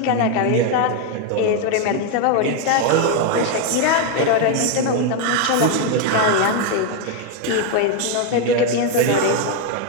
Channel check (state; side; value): different; both; correlation 0.01